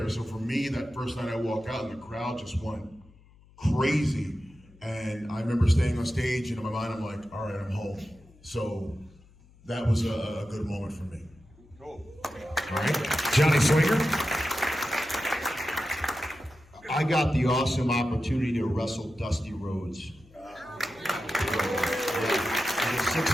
So for me, that first night I walk out and the crowd just went crazy. And I remember staying on stage and in my mind I'm like, all right, I'm home. So that was a good moment for me. Cool. All right. Johnny Swinger. I got the awesome opportunity to wrestle Dusty Rhodes.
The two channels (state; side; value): noise; left; hum, 26 dB below the sound